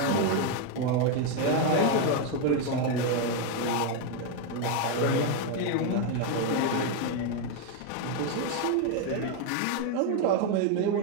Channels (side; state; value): both; different; correlation 0.02